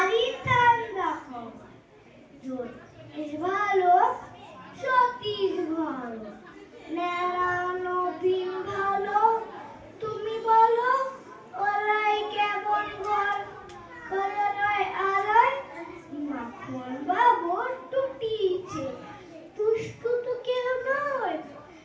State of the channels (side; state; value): both; identical; correlation 1.00